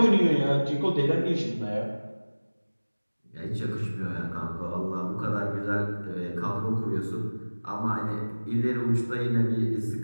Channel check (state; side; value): inverted; both; correlation -1.00